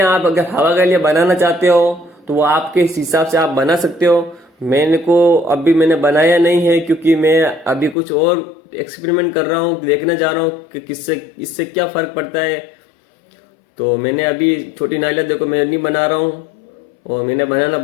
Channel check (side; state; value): right; drops out; at 8.0 s